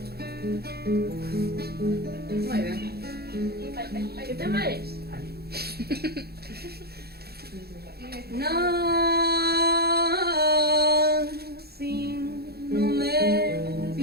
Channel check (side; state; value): left; late; 0.46 ms